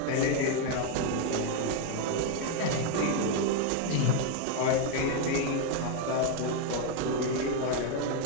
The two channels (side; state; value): both; different; correlation 0.01